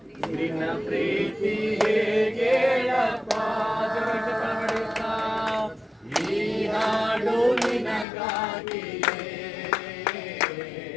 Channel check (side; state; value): right; drops out; at 8.1 s